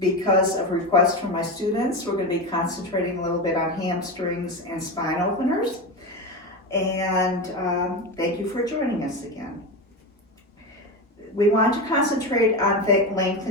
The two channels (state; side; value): normal; both; correlation 0.19